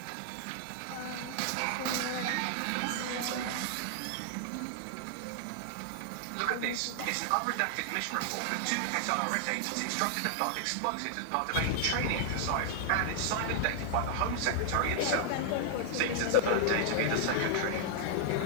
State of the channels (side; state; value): both; different; correlation -0.01